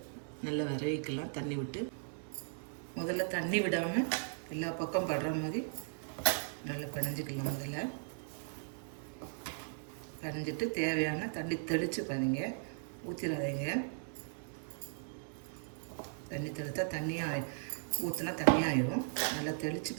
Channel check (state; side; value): silent; left; 53 dB below the other